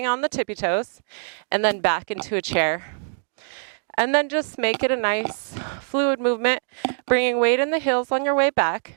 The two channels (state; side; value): silent; left; digital silence